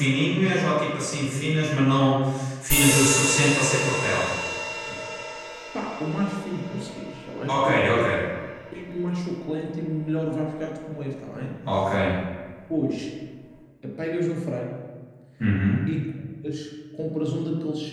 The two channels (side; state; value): both; identical; correlation 1.00